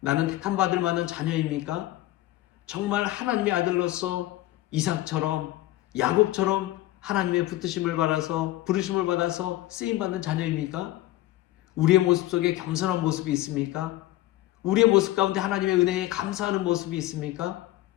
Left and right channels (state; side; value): quieter; right; 16.0 dB